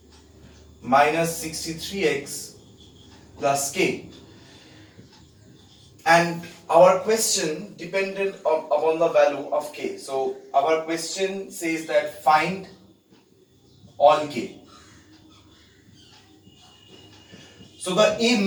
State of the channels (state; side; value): identical; both; correlation 1.00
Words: minus 63x plus k. And our question depended upon the value of k. So our question says that find all k. So the